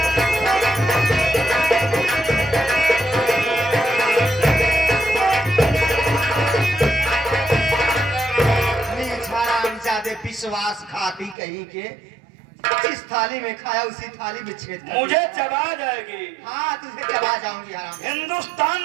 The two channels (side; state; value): left; drops out; at 11.4 s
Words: विश्वास खाती कहीं के, जिस थाली में खाया उसी थाली में छेद कर मुझे चबा जाएगी। हाँ, तुझे चबा जाऊंगी हराम। हिंदुस्तान